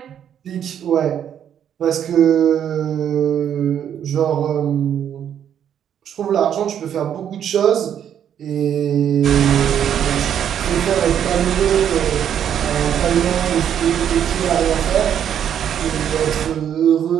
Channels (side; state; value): left; quieter; 9.3 dB